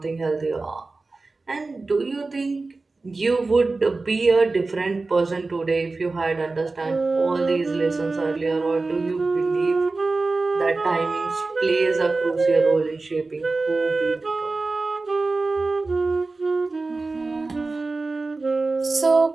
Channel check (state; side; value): quieter; left; 3.6 dB